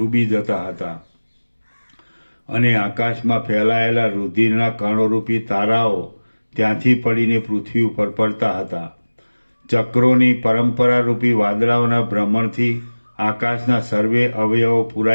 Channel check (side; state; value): both; inverted; correlation -1.00